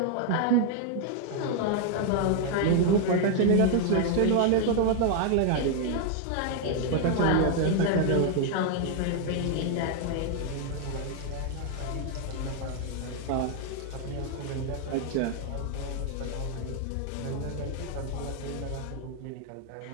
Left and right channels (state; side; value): different; both; correlation 0.00